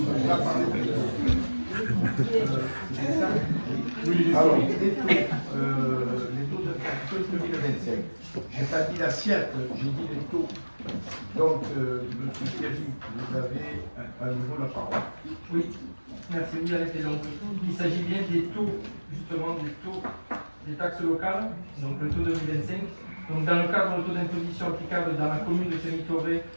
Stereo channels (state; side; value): inverted; both; correlation -1.00